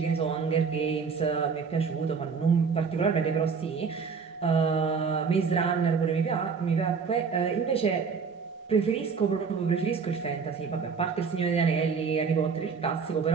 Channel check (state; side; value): quieter; left; 5.6 dB